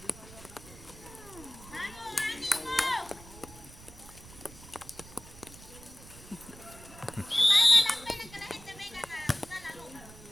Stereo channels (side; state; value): right; noise; rumble, 18 dB below the sound